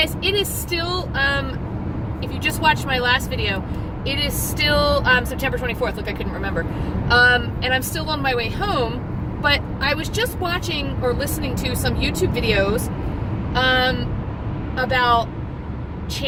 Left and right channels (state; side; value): identical; both; correlation 1.00